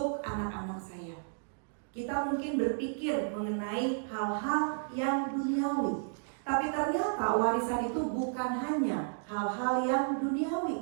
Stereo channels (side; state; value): left; silent; digital silence